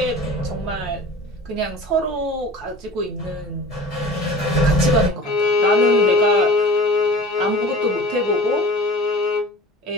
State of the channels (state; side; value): normal; both; correlation 0.41